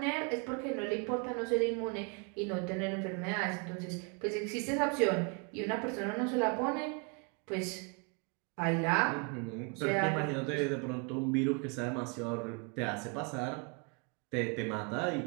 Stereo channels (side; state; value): left; quieter; 34.2 dB